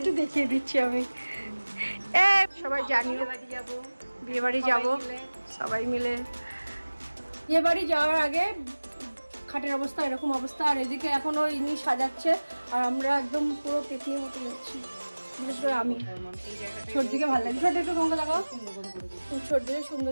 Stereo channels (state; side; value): inverted; both; correlation -1.00